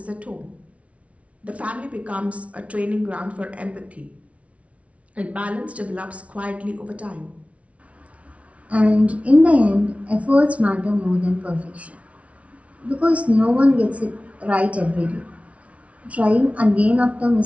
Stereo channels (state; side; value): late; left; 0.064 ms